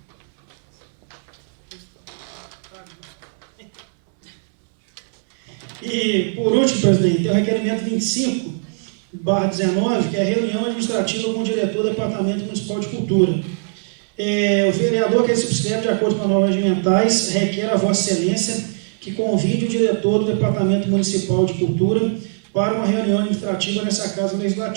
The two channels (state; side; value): silent; left; 63 dB below the other